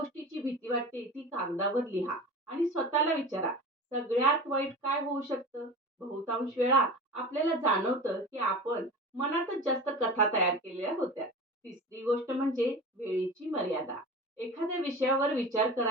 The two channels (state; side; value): normal; both; correlation 0.33